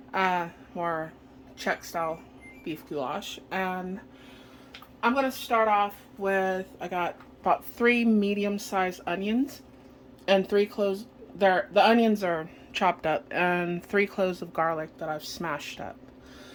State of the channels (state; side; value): identical; both; correlation 1.00